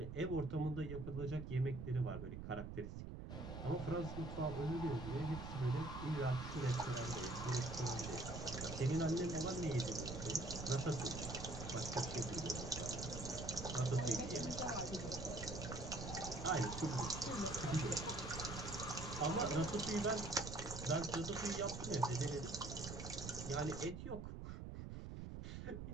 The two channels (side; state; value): right; noise; rumble, 7 dB below the sound